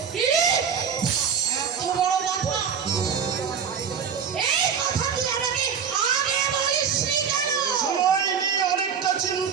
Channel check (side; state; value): left; quieter; 7.1 dB